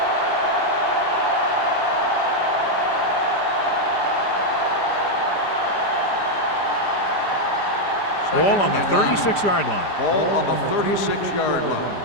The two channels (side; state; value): right; late; 5.0 ms